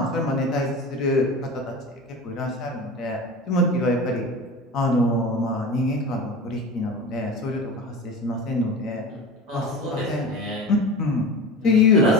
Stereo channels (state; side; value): normal; both; correlation 0.32